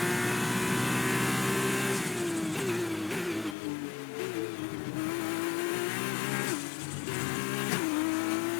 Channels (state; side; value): drops out; right; at 3.6 s